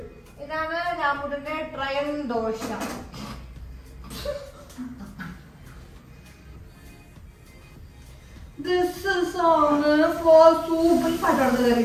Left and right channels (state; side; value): identical; both; correlation 1.00